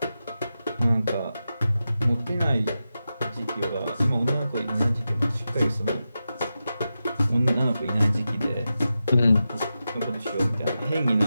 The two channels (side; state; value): both; inverted; correlation -0.91